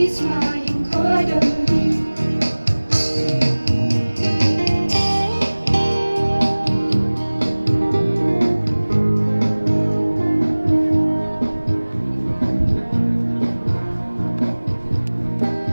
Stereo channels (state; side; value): inverted; both; correlation -1.00